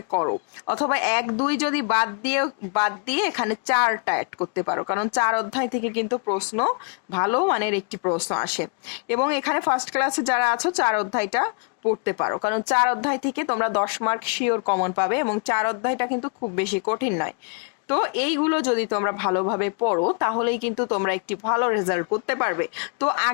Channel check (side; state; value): right; quieter; 36.9 dB